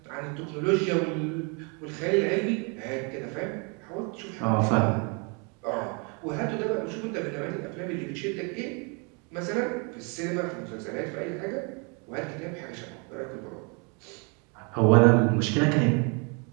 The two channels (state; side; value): quieter; left; 34.1 dB